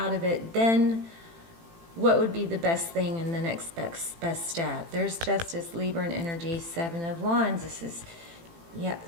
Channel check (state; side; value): late; left; 18 ms